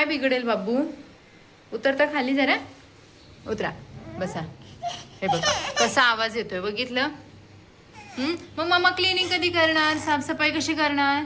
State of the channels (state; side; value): identical; both; correlation 1.00